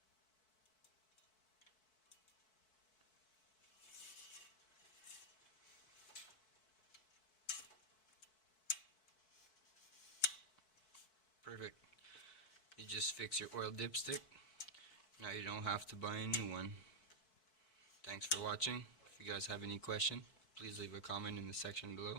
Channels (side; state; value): right; late; 4.6 ms